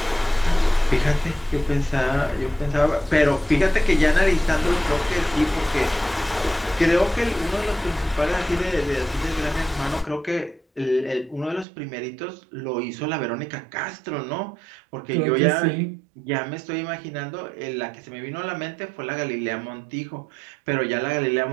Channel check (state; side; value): drops out; left; at 11.7 s